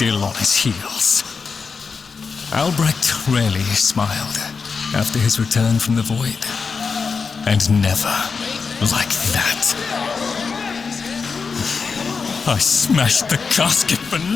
on his heels. Albrecht rarely smiled after his return from the void. And never like that. I smashed the casket for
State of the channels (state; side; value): quieter; right; 5.2 dB